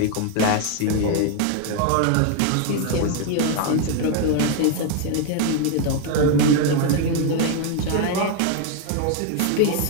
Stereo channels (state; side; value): different; both; correlation 0.01